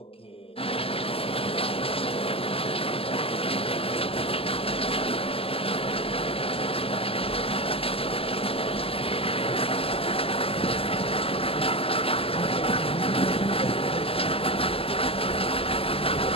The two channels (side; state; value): right; late; 0.28 ms